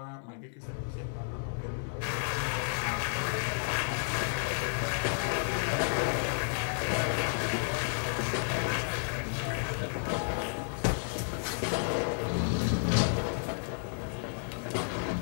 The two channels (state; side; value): silent; right; digital silence